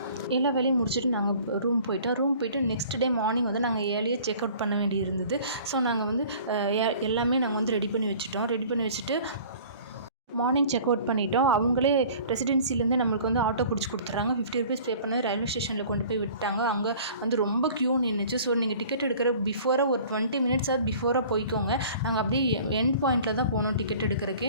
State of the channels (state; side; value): inverted; both; correlation -0.48